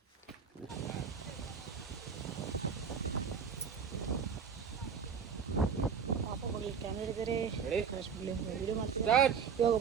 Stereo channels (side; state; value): left; quieter; 6.6 dB